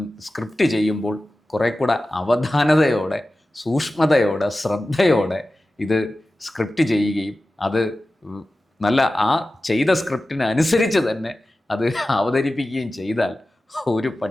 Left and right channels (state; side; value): normal; both; correlation 0.95